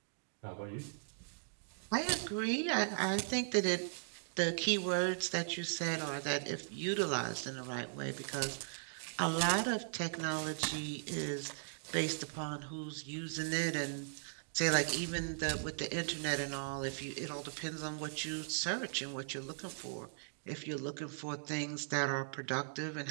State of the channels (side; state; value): left; silent; digital silence